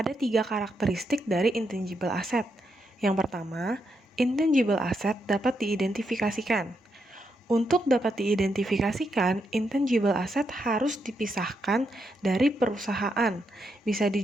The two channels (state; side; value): normal; both; correlation 0.81